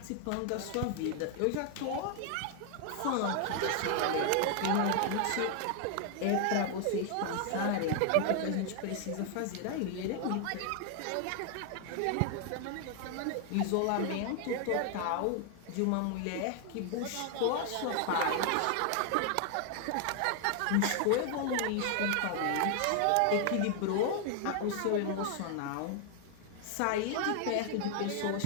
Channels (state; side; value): different; both; correlation 0.00